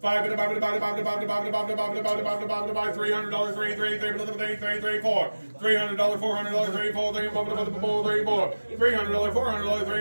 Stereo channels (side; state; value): both; inverted; correlation -1.00